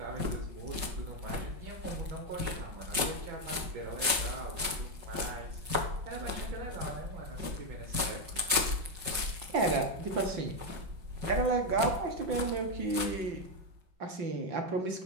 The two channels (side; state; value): left; late; 5.3 ms